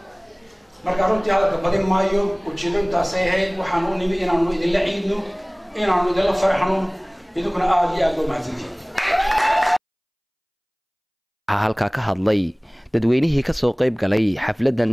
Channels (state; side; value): identical; both; correlation 1.00